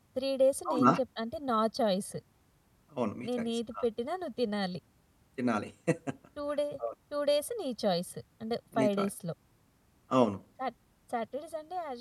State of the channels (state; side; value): identical; both; correlation 1.00